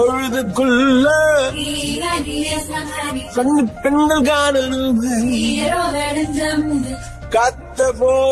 கண்ணு பெண்கள் காணணுமே காத்த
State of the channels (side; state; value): both; identical; correlation 1.00